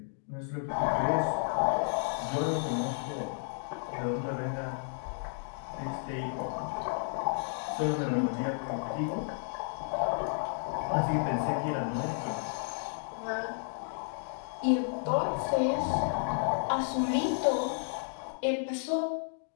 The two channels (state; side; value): silent; right; digital silence